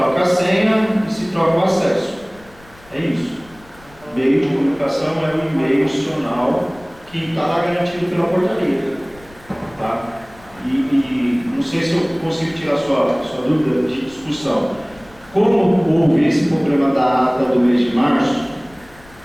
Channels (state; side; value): noise; left; rumble, 25 dB below the sound